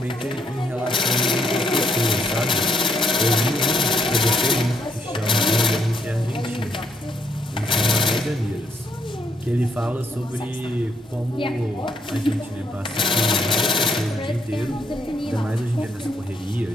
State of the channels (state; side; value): normal; both; correlation 0.75